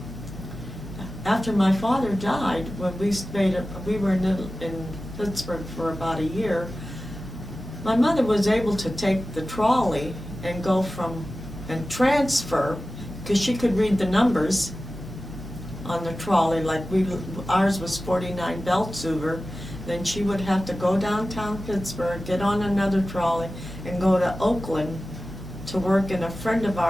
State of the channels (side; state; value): both; normal; correlation 0.95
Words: after my father died, when we were in Pittsburgh for about a year, my mother was able to take the trolley and go and transfer, because she could read the numbers on the trolley, like ours was 49 Beltsuver, then she would have to go downtown Pittsburgh, get on another trolley, and go to Oakland to work in a friend of